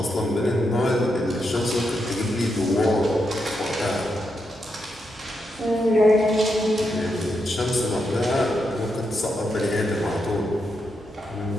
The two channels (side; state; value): both; normal; correlation 0.83